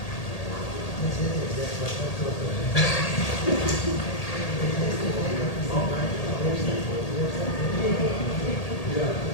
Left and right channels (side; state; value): right; late; 1.8 ms